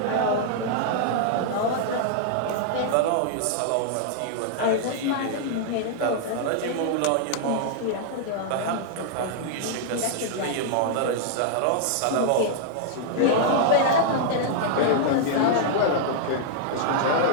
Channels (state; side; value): different; both; correlation -0.01